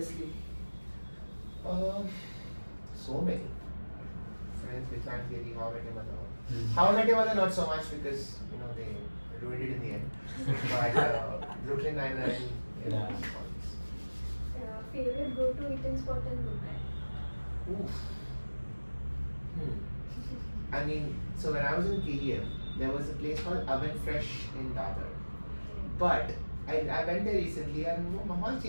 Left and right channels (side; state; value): both; inverted; correlation -1.00